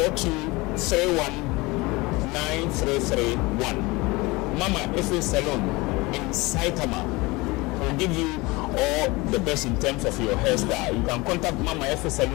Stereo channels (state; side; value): quieter; right; 23.3 dB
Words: Mama Efe Salon in Saitama will give you all the best in terms of your hairstyle. You can contact Mama Efe